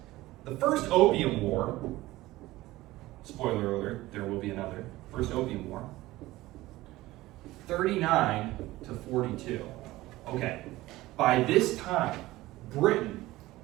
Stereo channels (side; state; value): left; quieter; 17.8 dB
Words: the first Opium War, spoiler alert, there will be another, first Opium War, 39 to 42. Okay, by this time, Britain